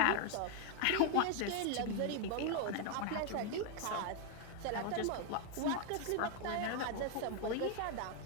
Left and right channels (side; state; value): both; different; correlation 0.00